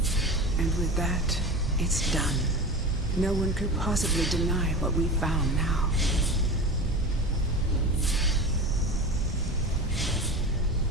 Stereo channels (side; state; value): right; noise; rumble, 9 dB below the sound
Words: And with that, it's done. No one could possibly deny what we found now.